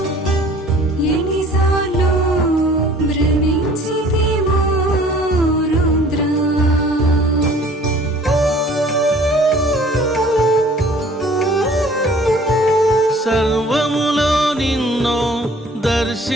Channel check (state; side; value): normal; both; correlation 0.52